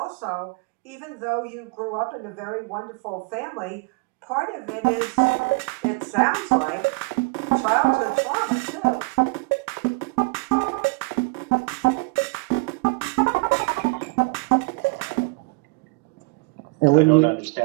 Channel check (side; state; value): left; quieter; 28.1 dB